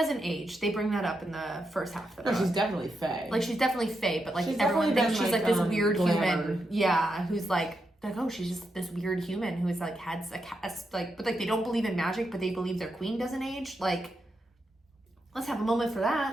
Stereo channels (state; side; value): normal; both; correlation 0.84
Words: age. They bring that up in the first half of the No, book. she's definitely Faye. Like, she's definitely Faye, but, like, She's everyone definitely thinks been, she's, like, like, this weird glamored. human. Yeah, who's, like, oh, she's just this weird human who's, like, had like, but, like, they don't believe in magic, but they believe their queen doesn't age. Like, let's have a moment for